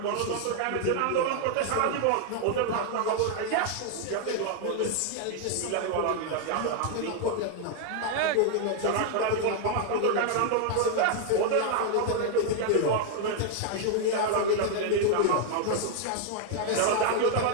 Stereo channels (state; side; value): different; both; correlation 0.00